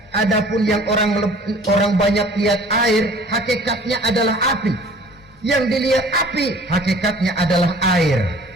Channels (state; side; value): normal; both; correlation 0.49